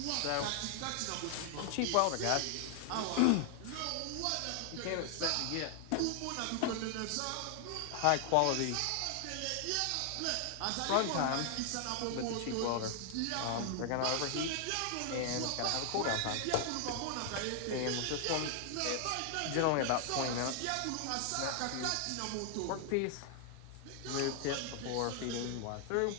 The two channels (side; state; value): both; different; correlation 0.00